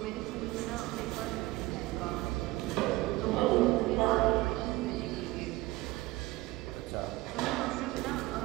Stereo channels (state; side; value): quieter; left; 19.4 dB